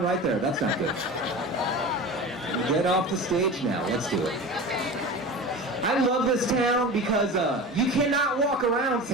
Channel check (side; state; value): both; normal; correlation 0.32